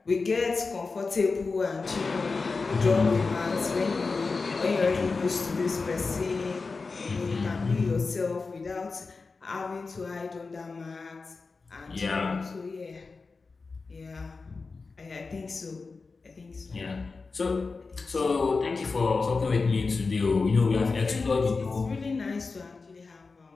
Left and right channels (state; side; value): quieter; right; 4.2 dB